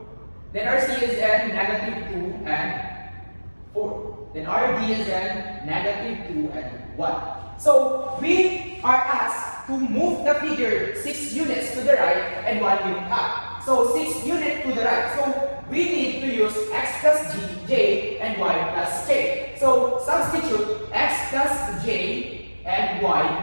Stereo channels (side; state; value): both; inverted; correlation -1.00